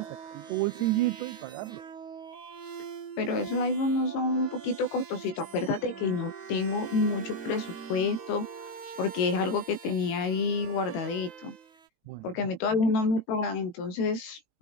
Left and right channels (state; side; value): late; right; 18 ms